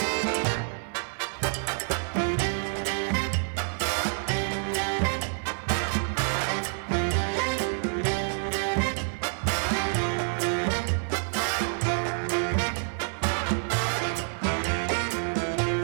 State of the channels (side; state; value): left; silent; 58 dB below the other